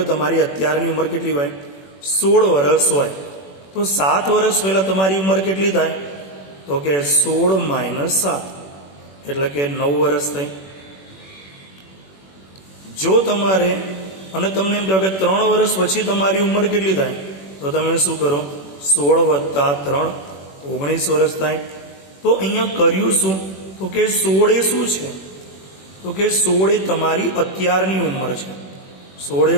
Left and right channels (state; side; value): late; right; 21 ms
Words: તમારી અત્યારની ઉંમર કેટલી હોય? 16 વર્ષ હોય. તો 7 વર્ષ પહેલા તમારી ઉંમર કેટલી થાય? તો કે 16 - 7 એટલે કે 9 વર્ષ થઈ. જો તમારે અને તમને એમ કહો કે 3 વર્ષ પછી તમારી ઉંમર કેટલી થાય? તો તમે શું કરો? 16 + 3 19 વર્ષ થાય. તો અહીંયા કર્યું શું? તો કે 16 શું છે? તો કે 16 તમારી અત્યારની ઉંમર છે.